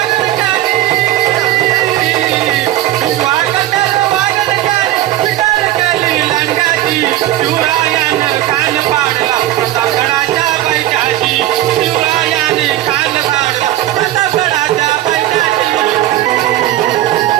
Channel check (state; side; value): quieter; left; 14.1 dB